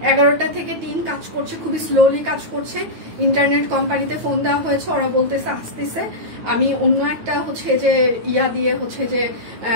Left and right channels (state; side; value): late; left; 9.2 ms